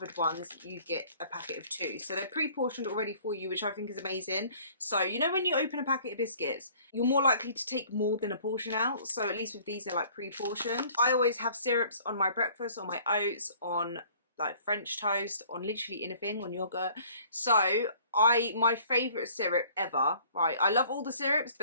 ones you get a packet of 2. So they're pre-portioned already for you, which I think is amazing. So you know when you open a packet of biscuits, you're more likely to take more than a portion out. So at least with these they're like pre-portioned. I always have syrups on my breakfast, on my oats, on like French toast, on literally anything, on yogurt. So my favourite syrup ever, right? I love all the syrups,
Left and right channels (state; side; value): inverted; both; correlation -0.54